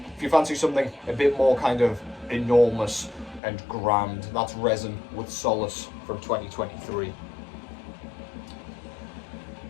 if you fancy something a bit more kind of enormous and grand. That's Rezn with Solace from 2023.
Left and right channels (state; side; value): drops out; right; at 3.4 s